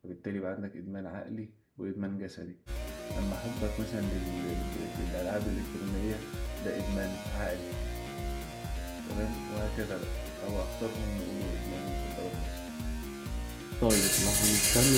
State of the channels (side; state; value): both; identical; correlation 1.00